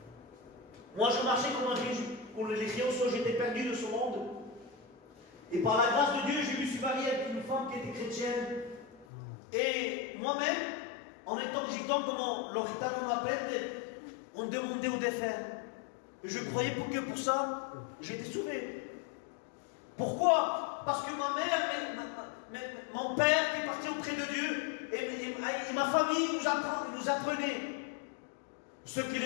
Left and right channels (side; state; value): right; drops out; at 9.1 s